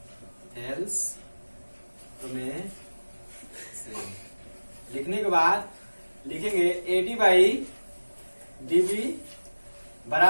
थेल्स प्रमेय से लिखने के बाद लिखेंगे AD बाई DB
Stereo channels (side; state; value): both; inverted; correlation -1.00